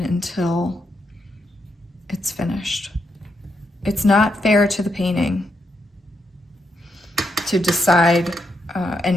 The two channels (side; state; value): both; normal; correlation 0.81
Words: until it's finished. It's not fair to the painting to decide